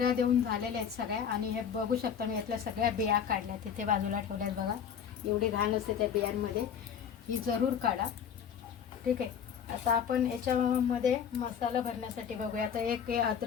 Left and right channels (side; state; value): right; quieter; 7.8 dB